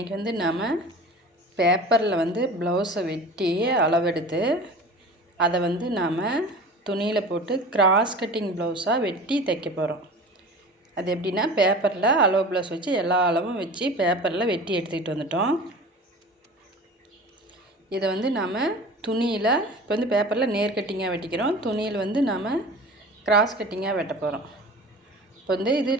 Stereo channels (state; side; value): normal; both; correlation 0.37